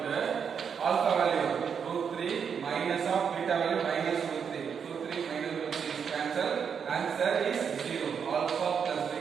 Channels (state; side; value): quieter; left; 6.9 dB